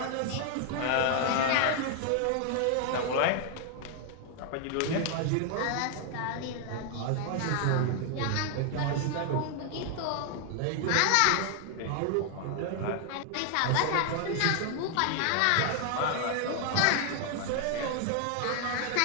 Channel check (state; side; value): different; both; correlation 0.00